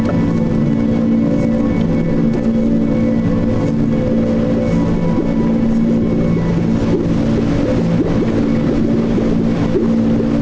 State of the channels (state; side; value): identical; both; correlation 1.00